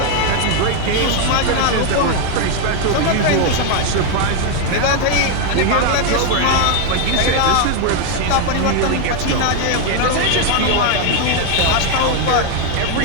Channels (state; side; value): different; both; correlation 0.01